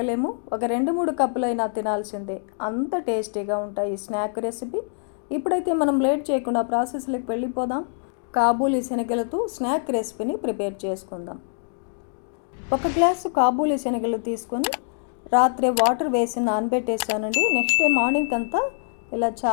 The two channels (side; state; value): right; silent; digital silence